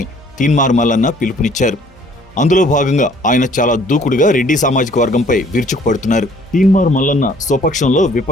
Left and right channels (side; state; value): both; normal; correlation 0.58